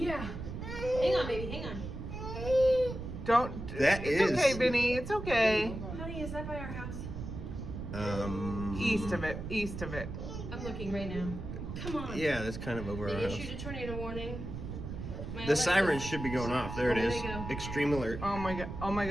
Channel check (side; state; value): right; noise; rumble, 7 dB below the sound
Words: Hang on, baby, hang on. Don't. That it's is- okay, Vinny. It's okay. Honey, is that by our house? East of it. East of it. I'm looking right now. Come on. Yeah, that's kind of over our They house. issued a tornado warning. My The Alexa- sirens should be going off. There it There is. they go. Extreme alert. Oh my god. Oh my